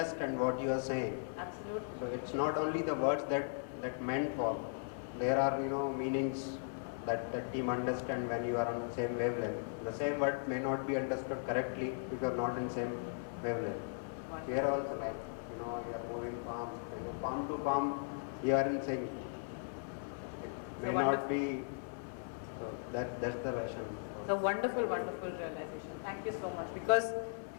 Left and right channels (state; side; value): silent; right; 53 dB below the other